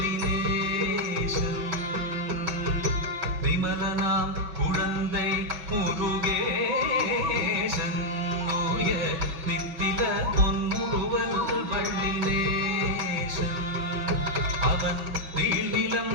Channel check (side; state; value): left; late; 6.3 ms